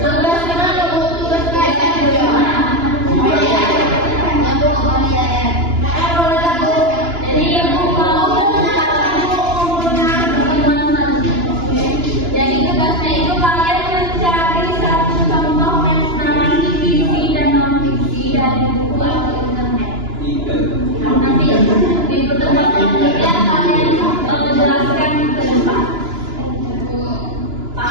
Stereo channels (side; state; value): left; late; 2.9 ms